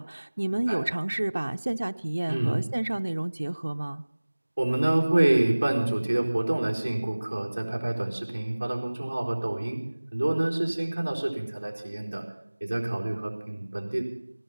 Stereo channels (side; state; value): both; inverted; correlation -1.00